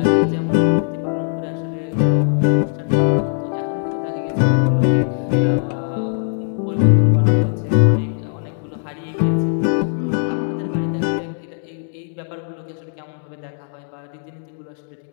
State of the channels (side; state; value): right; silent; digital silence